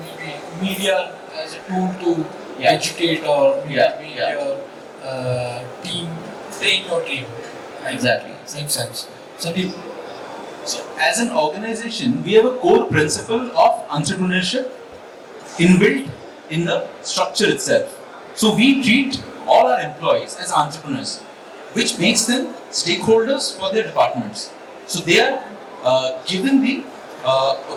media as a tool to educate or make your team, train your team. Exactly. Makes sense. Sandip. So as an organization, we have a core principle of entrepreneurship inbuilt in the structure itself. So we treat all our employees as entrepreneurs, which makes them stakeholders for their departments. So they are given the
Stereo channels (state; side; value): identical; both; correlation 1.00